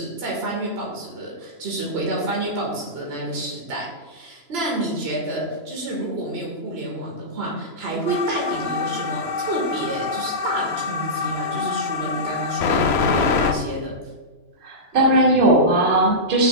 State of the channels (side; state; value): left; late; 3.0 ms